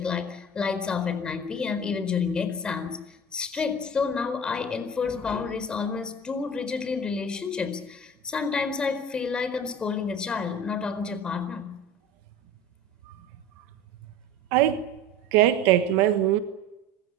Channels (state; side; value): normal; both; correlation 0.36